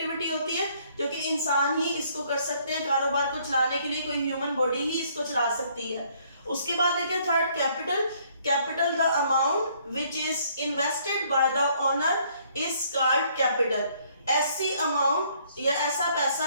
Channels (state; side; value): inverted; both; correlation -0.64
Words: होती है जो कि इंसान ही इसको कर सकते हैं। कारोबार को चलाने के लिए कोई ह्यूमन बॉडी ही इसको चला सकती है। उसके बाद है क्या? Third capital. Capital the amount which is invested by the owner is called capital. ऐसी अमाउंट या ऐसा